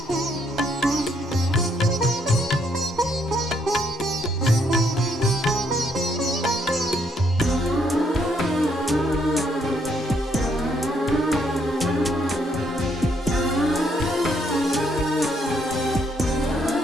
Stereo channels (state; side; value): normal; both; correlation 0.71